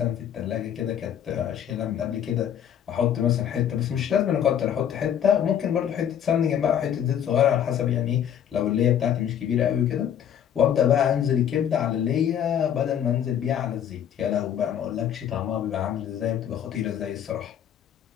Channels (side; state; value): right; quieter; 9.4 dB